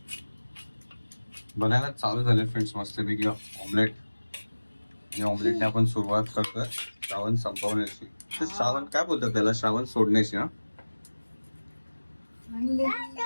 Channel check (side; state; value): both; inverted; correlation -1.00